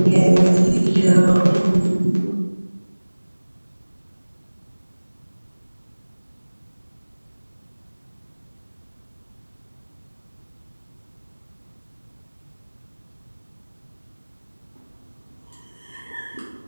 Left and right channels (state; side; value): inverted; both; correlation -1.00